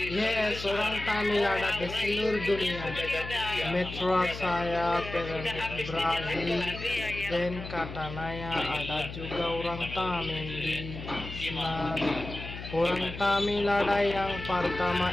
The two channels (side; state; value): left; noise; hum, 10 dB below the sound